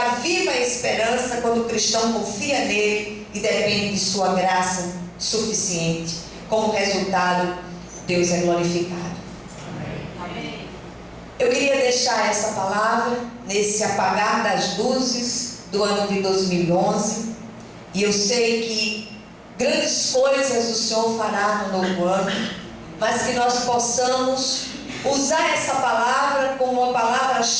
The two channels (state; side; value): identical; both; correlation 1.00